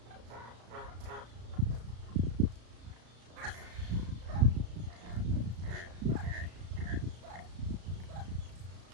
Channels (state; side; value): late; left; 34 ms